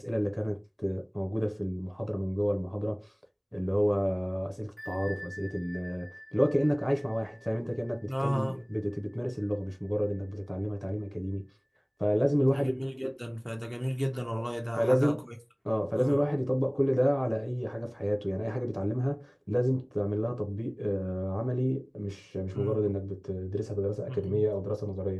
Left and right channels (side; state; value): both; identical; correlation 1.00